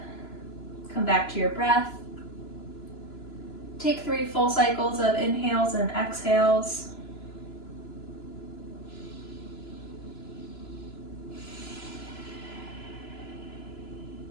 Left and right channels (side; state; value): right; late; 3.0 ms